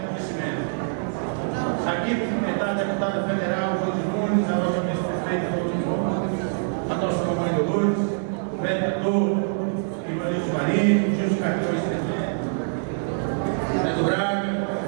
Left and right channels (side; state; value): left; silent; digital silence